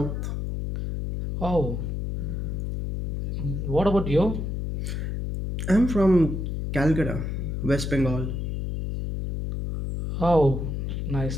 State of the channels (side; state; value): left; noise; hum, 3 dB below the sound